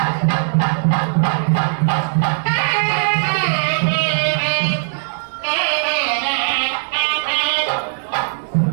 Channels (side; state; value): left; silent; 63 dB below the other